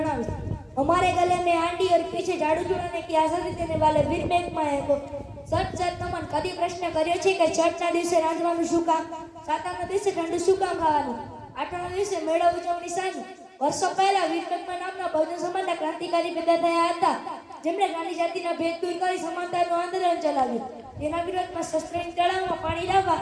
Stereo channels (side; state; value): both; identical; correlation 1.00